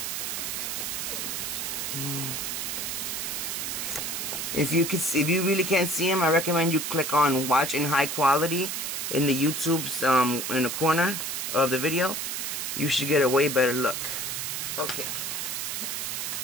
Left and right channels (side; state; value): right; noise; hiss, 3 dB below the sound